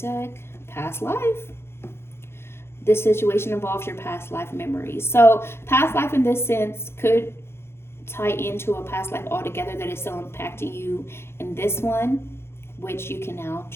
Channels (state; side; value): late; right; 0.12 ms